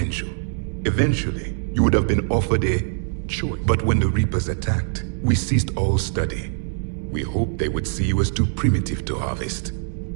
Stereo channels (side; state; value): left; silent; digital silence